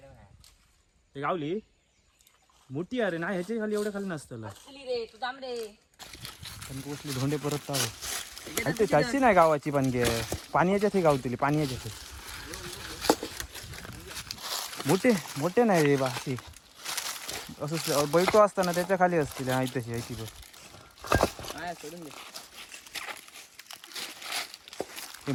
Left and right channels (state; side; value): identical; both; correlation 1.00